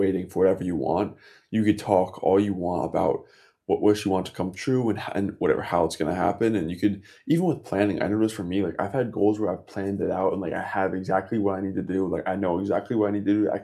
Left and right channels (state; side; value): identical; both; correlation 1.00